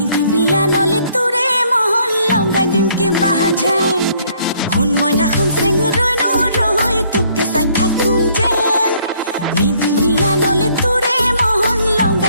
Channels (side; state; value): both; inverted; correlation -0.64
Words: বিয়া নলে তোৰে মহল লগাই দিম কিবা যেন শুন মইনা শুন চেঙুৰৈ নৰৈ তোকে চাই থাকোঁ যেন নিদি বিয়া নলে তোৰে মহল